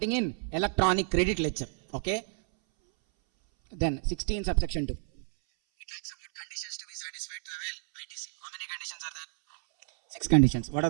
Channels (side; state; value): left; silent; 58 dB below the other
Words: in electronic credit ledger. Okay? Then 16 subsection 2. It talks about conditions to be satisfied to avail ITC. How many conditions are there? 6 conditions. What